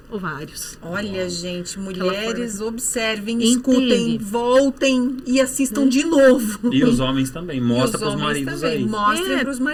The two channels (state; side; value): identical; both; correlation 1.00